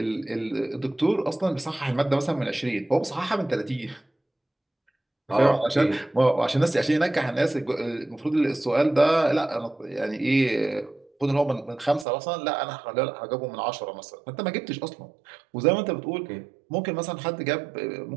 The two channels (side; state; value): left; drops out; at 12.1 s